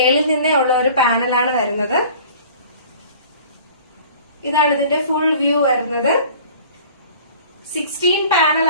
നിന്നേ ഉള്ള ഒരു പാനലാണ് വരുന്നത്. ഇതാണ് ഇതിന്റെ ഫുൾ വ്യൂ വരുന്നത്. 16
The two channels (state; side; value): inverted; both; correlation -0.46